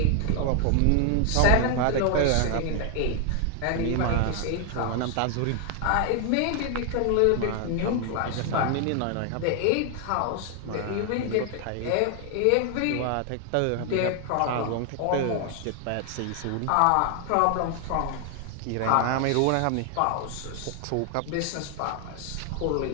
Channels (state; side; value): different; both; correlation 0.00